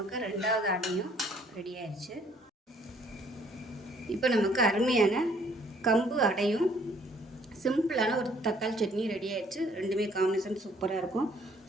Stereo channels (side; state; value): both; normal; correlation 0.61